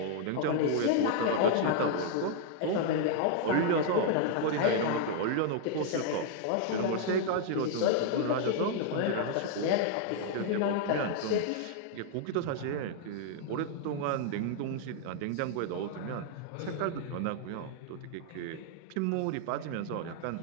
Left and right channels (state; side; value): different; both; correlation 0.00